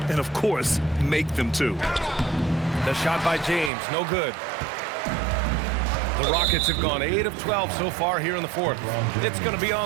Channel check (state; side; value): drops out; left; at 3.7 s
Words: and, of course, make them too. The shot by James, no good. The Rockets have gone 8 of 12 so far here in the fourth. It's going to be